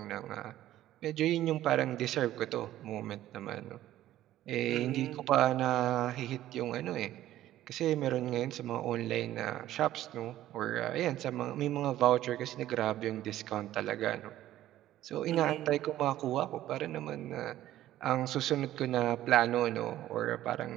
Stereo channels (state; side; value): quieter; left; 13.6 dB